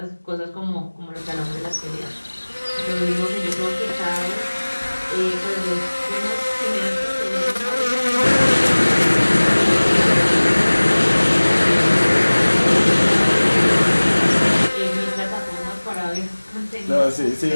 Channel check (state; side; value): inverted; both; correlation -1.00